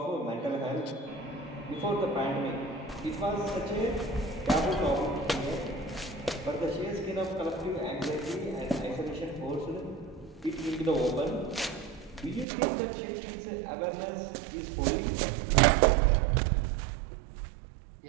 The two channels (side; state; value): left; drops out; at 12.5 s